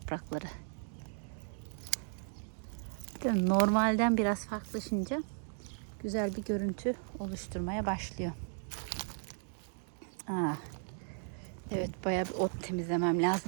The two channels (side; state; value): left; silent; 54 dB below the other